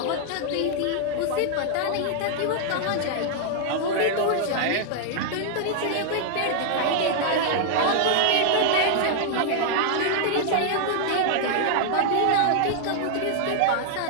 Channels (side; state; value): both; different; correlation -0.01